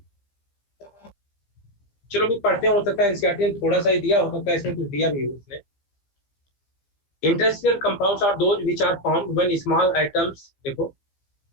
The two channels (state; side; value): late; right; 15 ms